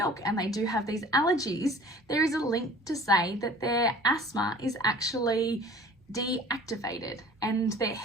and they do have these allergies, there is a link to say that their asthma is actually deactivated and their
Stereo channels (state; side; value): normal; both; correlation 0.47